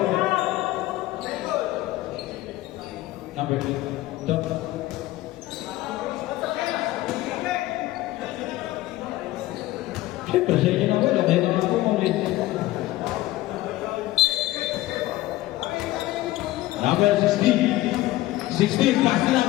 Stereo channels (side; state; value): right; quieter; 16.9 dB